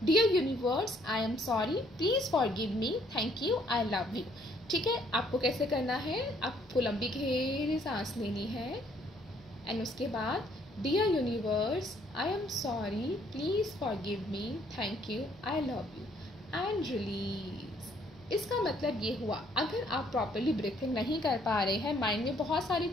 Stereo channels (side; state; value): both; normal; correlation 0.65